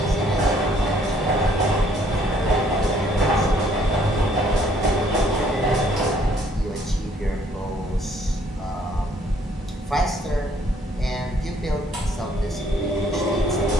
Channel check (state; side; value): normal; both; correlation 0.64